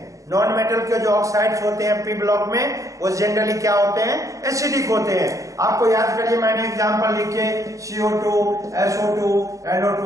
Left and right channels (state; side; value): late; left; 0.16 ms